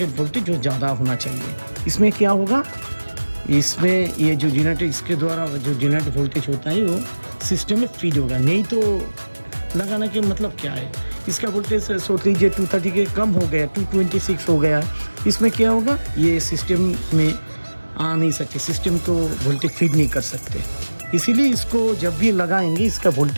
वोल्टेज जो ज़्यादा होना चाहिए। इसमें क्या होगा, इसमें ये जो जनरेटेड इसके द्वारा जो जनरेट वोल्टेज होता है वो सिस्टम में फीड होगा। नहीं तो लगाने के मतलब क्या है, इसका वोल्टेज सोच लीजिए 230 के कम हो गया, 226 हो गया, इसमें क्या होगा, ये सिस्टम में आ नहीं सकते, सिस्टम को वोल्टेज फीड नहीं कर सकते। इसीलिए इसको जब भी लगाएंगे इसका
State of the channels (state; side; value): inverted; both; correlation -1.00